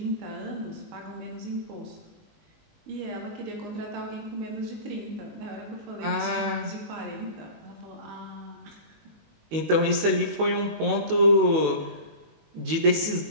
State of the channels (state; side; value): late; left; 19 ms